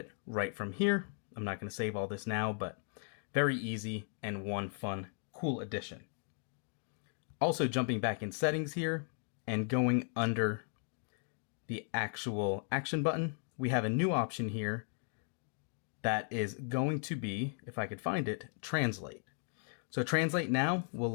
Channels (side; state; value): right; silent; 53 dB below the other